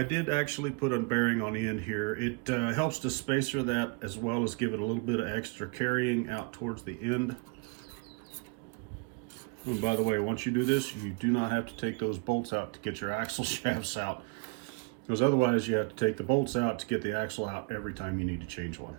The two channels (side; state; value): left; quieter; 31.1 dB